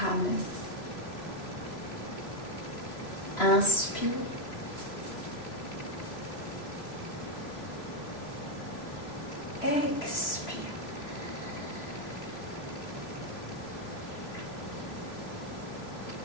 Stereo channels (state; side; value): late; right; 3.0 ms